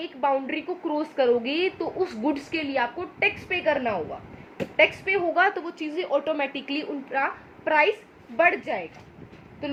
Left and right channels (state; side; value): identical; both; correlation 1.00